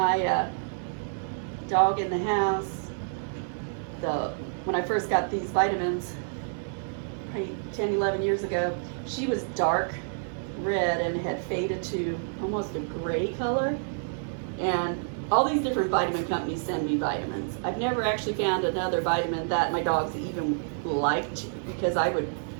dog in the house, when I first got these vitamins, probably 10, 11 years ago, she was dark red and had faded to almost a gray color. And all these different vitamin companies send me vitamins. I've never actually found another vitamin that my dogs even liked, because I would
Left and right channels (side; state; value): left; silent; 59 dB below the other